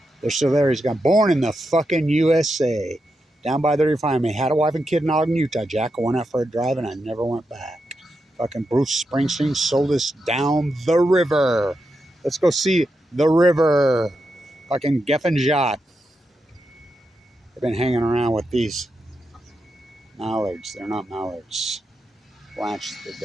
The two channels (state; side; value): normal; both; correlation 0.86